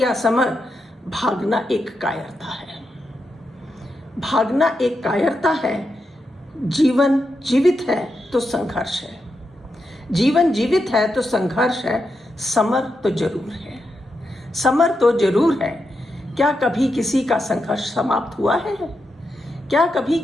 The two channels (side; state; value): both; normal; correlation 0.86